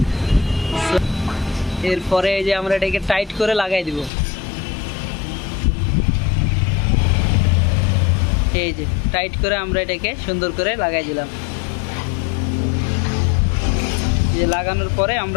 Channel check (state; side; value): drops out; right; at 4.1 s